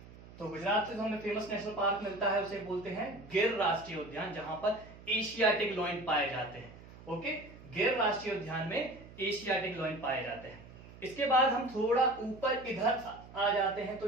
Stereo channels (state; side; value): noise; right; hum, 18 dB below the sound